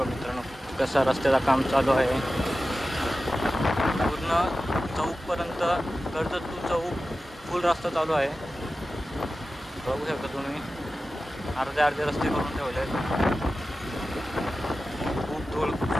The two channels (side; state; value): both; normal; correlation 0.94